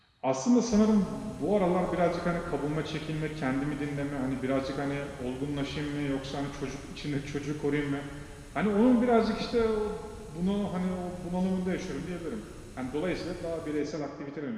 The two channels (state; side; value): identical; both; correlation 1.00